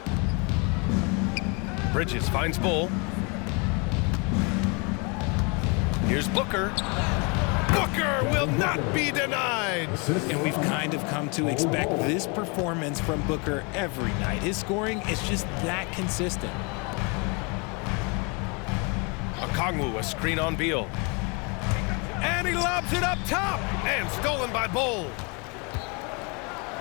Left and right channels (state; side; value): quieter; right; 31.8 dB